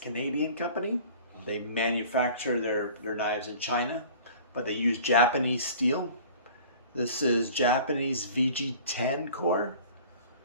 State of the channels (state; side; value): inverted; both; correlation -0.46